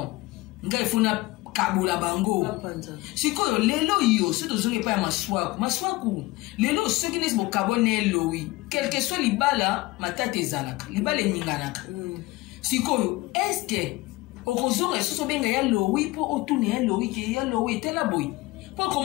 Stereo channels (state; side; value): quieter; right; 20.5 dB